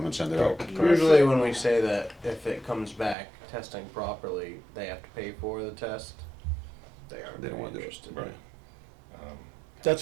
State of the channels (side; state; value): left; drops out; at 3.2 s